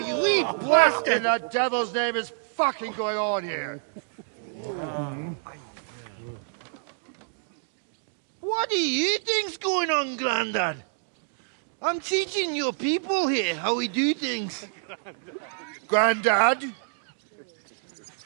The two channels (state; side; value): silent; left; digital silence